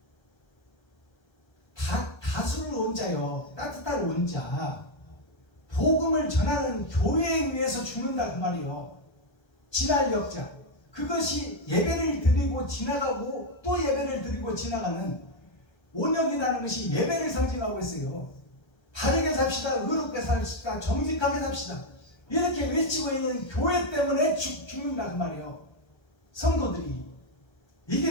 다수를 온자요, 따뜻한 온자, 복음을 전하는 교회에 의해서 죽는다 그 말이에요. 지날 역자, 그것이 예배를 드리고 지나가고 또 예배를 드리고 지나가는 온역이라는 것이 예배를 상징하고 있어요. 바르게 삽시다, 의롭게 삽시다, 정직하게 삽시다, 이렇게 외치고 있는 교회 때문에 죽는다 그 말이에요. 성도들이.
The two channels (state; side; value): late; right; 1.3 ms